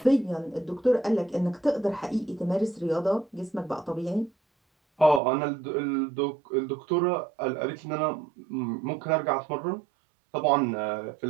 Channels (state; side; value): drops out; left; at 5.2 s